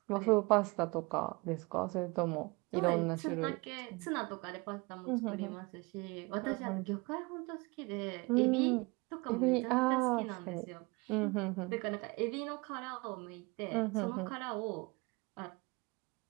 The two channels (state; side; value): quieter; left; 26.6 dB